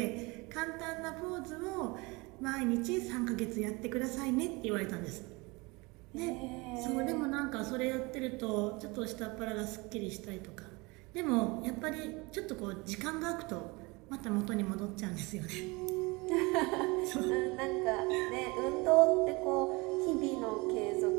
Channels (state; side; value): quieter; left; 25.6 dB